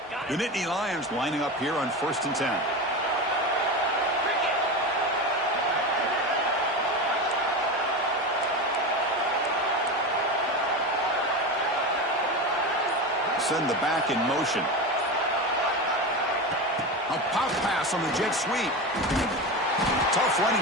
The Nittany Lions lining up here on first and 10. Send the back in motion. A pop pass on the jet sweep. Tough running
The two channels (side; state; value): both; normal; correlation 0.22